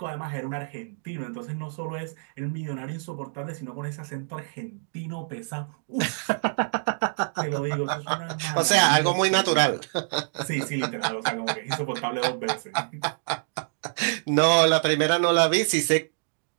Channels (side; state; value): left; silent; digital silence